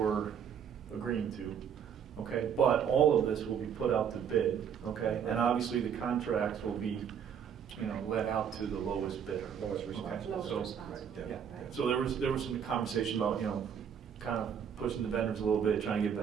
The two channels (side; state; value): left; quieter; 8.0 dB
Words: agreeing to, okay? But all of this will be put out to bid, okay? And obviously, the contracts will be, you know, let out to the lowest bidder. Lowest responsible. Okay, Lowest so- responsible. Right, Yeah, Right. so there was some conversation about, you know, kind of pushing the vendors a little bit, trying to get